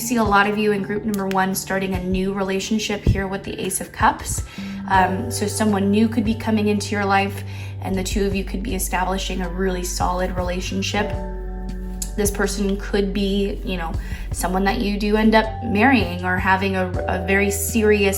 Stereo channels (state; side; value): identical; both; correlation 1.00